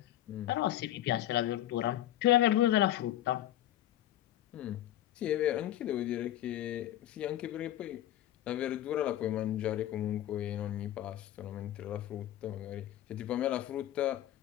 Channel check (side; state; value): right; quieter; 13.2 dB